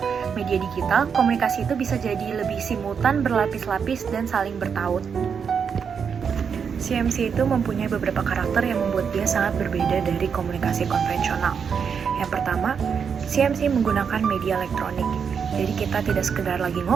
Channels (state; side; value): quieter; left; 6.6 dB